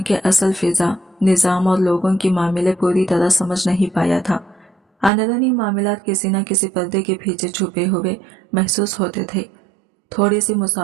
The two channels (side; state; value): left; drops out; at 5.1 s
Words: के असल फिजा, निज़ाम और लोगों की मामले पूरी तरह समझ नहीं पाया था। अंदरूनी मामलात किसी न किसी पर्दे के पीछे छुपे हुए महसूस होते थे। थोड़ी सी